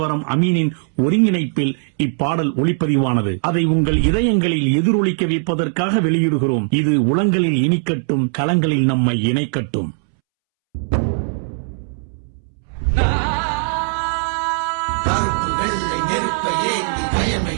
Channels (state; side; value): silent; left; 67 dB below the other